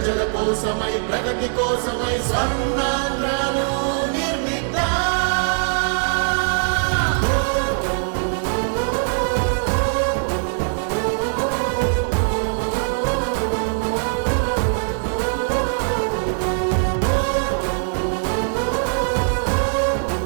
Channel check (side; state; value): left; silent; 61 dB below the other